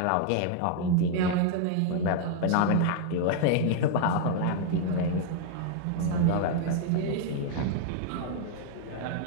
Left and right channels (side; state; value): both; different; correlation 0.00